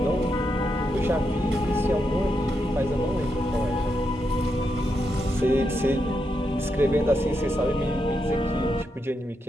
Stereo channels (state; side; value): normal; both; correlation 0.83